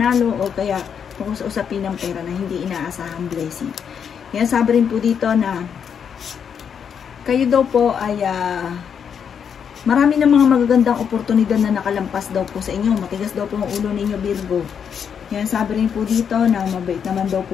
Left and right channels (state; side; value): quieter; right; 7.5 dB